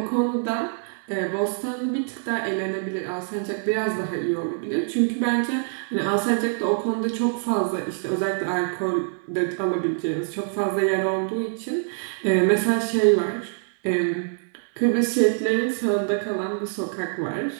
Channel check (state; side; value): silent; left; digital silence